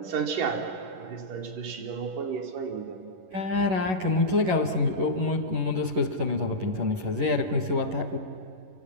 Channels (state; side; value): late; left; 11 ms